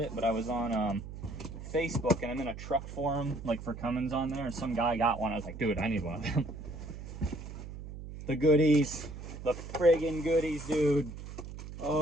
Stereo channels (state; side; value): noise; right; hum, 11 dB below the sound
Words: but I was on Facebook, and I'm in a truck forum, like, for Cummins on there, and some guy got one. I was like, dude, I need one of them. The goodies. The friggin' goodies, dude.